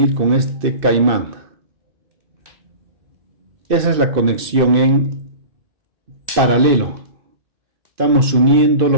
con este caimán. Esa es la conexión en paralelo. Estamos uniendo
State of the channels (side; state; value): left; late; 2.6 ms